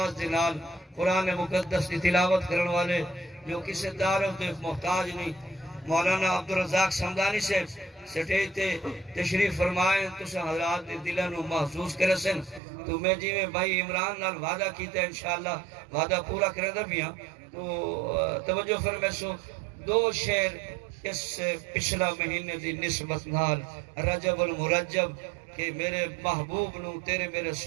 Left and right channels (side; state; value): left; drops out; at 12.6 s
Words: دنال قرآن مقدس کی تلاوت کرنے والے جو کسی داروں تے محتاج نہیں مولانا عبدالرزاق سمدانی سے سٹیج تے تشریف فرمائیں تو حضرات دلوں محسوس کرے سن تو میں جی میں بھائی عمران نال وعدہ کیتا ہے انشاءاللہ وعدہ پورا کرے دا بھی ہاں تو توجہ فرمائے سو دو شعر اس پچھلا مہینے دی نسبت نال رجب المرجب کہ میرے محبوب نو تیرے میرے